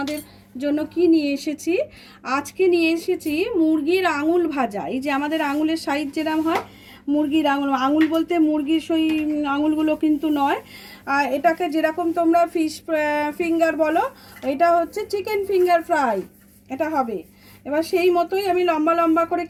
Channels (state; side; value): identical; both; correlation 1.00